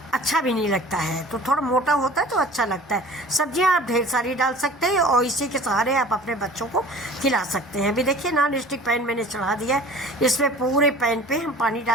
अच्छा भी नहीं लगता है। तो थोड़ा मोटा होता है तो अच्छा लगता है। सब्जियां आप ढेर सारी डाल सकते हैं और इसी के सहारे आप अपने बच्चों को खिला सकते हैं। अभी देखिए नॉन स्टिक पैन मैंने चढ़ा दिया है, इसमें पूरे पैन पे हम पानी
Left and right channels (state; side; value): normal; both; correlation 0.44